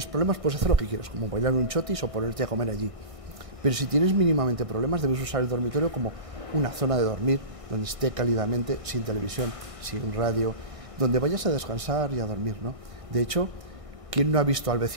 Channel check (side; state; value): left; late; 1.6 ms